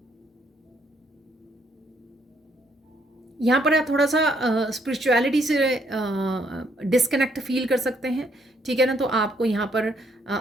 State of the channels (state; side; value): normal; both; correlation 0.70